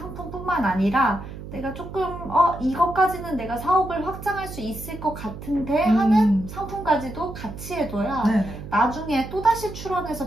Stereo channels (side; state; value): right; noise; hum, 11 dB below the sound